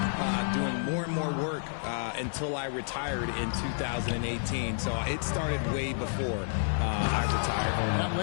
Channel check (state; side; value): silent; right; 58 dB below the other